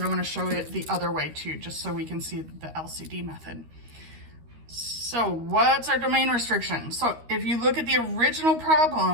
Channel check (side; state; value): left; late; 13 ms